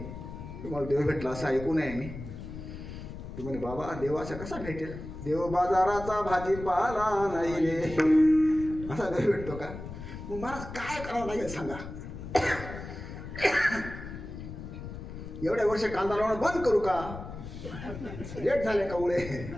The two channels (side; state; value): left; noise; rumble, 10 dB below the sound